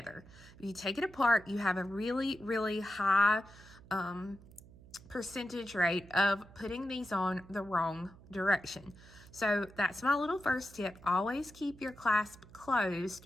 If you take it apart, you have a really, really high percentage rate of putting these on the wrong direction. So that's my little first tip. Always keep your clasp closed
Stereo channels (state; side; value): noise; right; hum, 21 dB below the sound